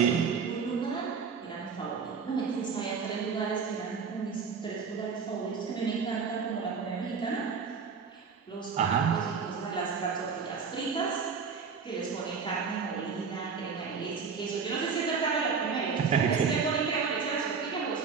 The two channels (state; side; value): quieter; left; 5.7 dB